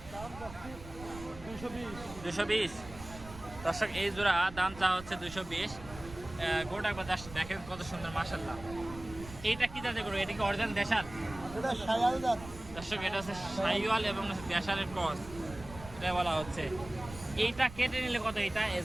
220। দর্শক এই জোড়া দাম চা হচ্ছে 220। গরুটা একবার দেখেন কত সুন্দর মাশাআল্লাহ। এইটা কি জাতের গরু? এটা কি অরিজিনাল দেশাল? দর্শক এটা হচ্ছে শাহিওয়াল এবং দেশালের ক্রস, এটা বলা হচ্ছে। এইটা কেটে নিলে কত? এইটা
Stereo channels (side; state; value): right; noise; rumble, 15 dB below the sound